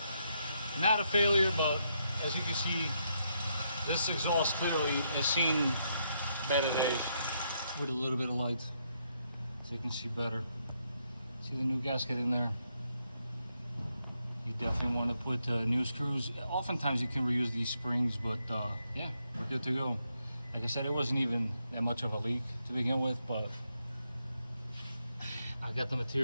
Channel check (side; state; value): both; inverted; correlation -0.78